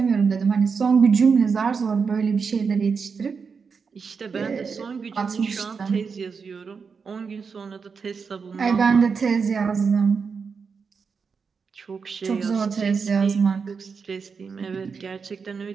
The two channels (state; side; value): quieter; left; 5.5 dB